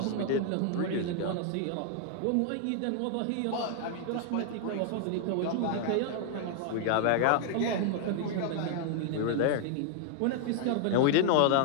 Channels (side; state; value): both; different; correlation 0.00